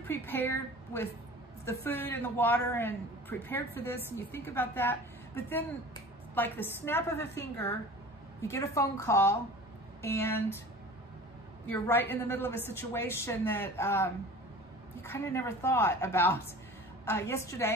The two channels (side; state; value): both; normal; correlation 0.40